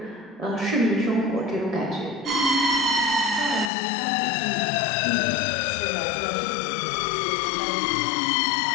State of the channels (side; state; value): right; drops out; at 3.7 s